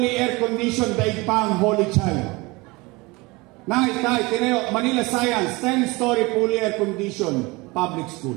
air-conditioned Daigpang Holy Child. Nay, tay, tinayo, Manila Science, 10-story fully air-conditioned public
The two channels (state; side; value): quieter; left; 24.1 dB